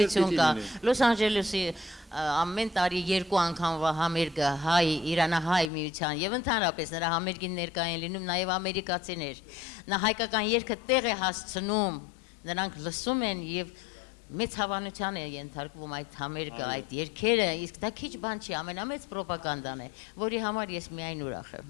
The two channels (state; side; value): drops out; right; at 5.7 s